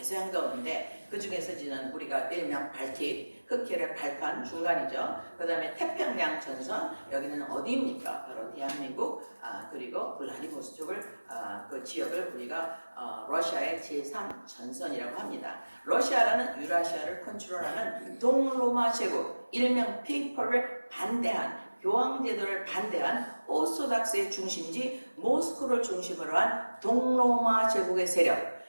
얼는데 그 중에서 지난 우리가 일명 발틱, 흑해를 발판 중간이죠. 그 다음에 태평양 전선, 여기는 어디입니까? 바로 대한민국, 그리고 블라디보스톡을 그 지역을 우리가 러시아의 제3 전선이라고 합니다. 러시아라는 유라시아를 컨트롤하는 동로마 제국, 일명 페이퍼를 반대한 교황제도를 반대한 오소닥스의 중심지 모스크를 중심으로 한 동로마 제국의 세력,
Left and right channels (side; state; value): both; inverted; correlation -1.00